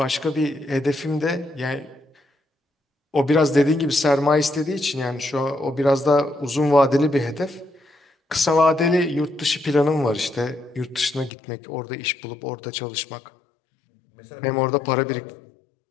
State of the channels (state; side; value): drops out; right; at 11.3 s